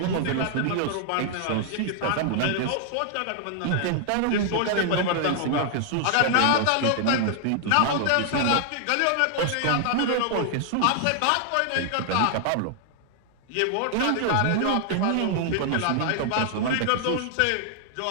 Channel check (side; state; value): both; different; correlation 0.00